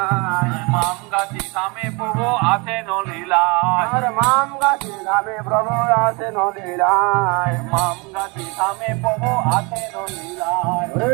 মাম গাছি গ্রামে প্রভু আছেন লীলায় আর মাম গাছে গ্রামে প্রভু আছেন লীলায় মাম গাছি গ্রামে প্রভু আছেন লীলায়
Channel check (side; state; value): left; quieter; 29.0 dB